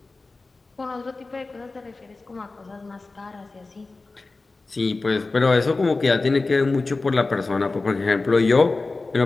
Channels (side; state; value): right; quieter; 3.6 dB